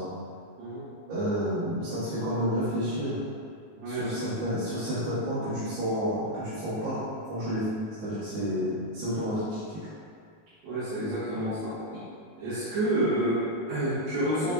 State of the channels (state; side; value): late; left; 19 ms